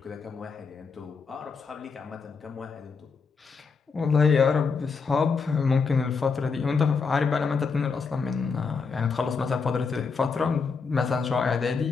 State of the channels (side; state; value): right; quieter; 5.1 dB